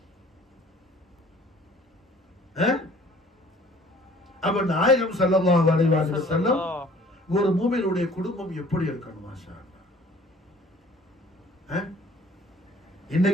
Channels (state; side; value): normal; both; correlation 0.52